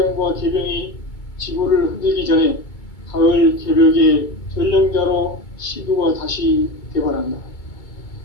개병이 지구를 흔들기 전에 가을 개벽의 전령자로 시도가 다시 개발한다.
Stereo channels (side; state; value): right; late; 2.2 ms